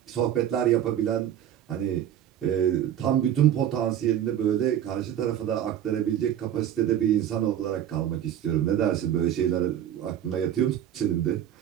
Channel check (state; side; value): quieter; left; 10.6 dB